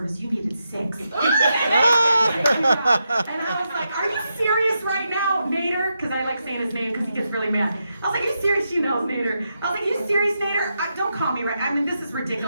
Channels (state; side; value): inverted; both; correlation -0.85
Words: You needed 6. And I was like, are you serious right now, Nader? Because I like saying his name because he gets really mad. I was like, are you serious? She knows Nader. I was like, you serious, Nader? Don't call me right. This is